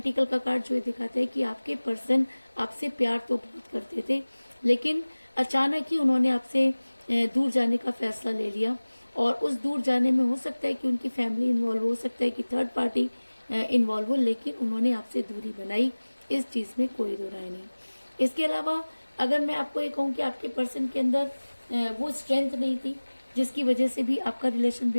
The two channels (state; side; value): inverted; both; correlation -1.00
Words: का कार्ड, जो ये दिखाता है कि आपके पर्सन आपसे प्यार तो बहुत करते थे, लेकिन अचानक ही उन्होंने आपसे दूर जाने का फैसला ले लिया। और उस दूर जाने में हो सकता है कि उनकी फैमिली इन्वॉल्व हो सकता है कि थर्ड पार्टी इन्वॉल्व हो, लेकिन उन्होंने आपसे दूरी बनाई, इस चीज में कोई दो राय नहीं। इसके अलावा अगर मैं आपको ये कहूँ कि आपके पर्सन के अंदर वो स्ट्रेंथ नहीं थी, जिसकी वजह से भी आपका रिलेशन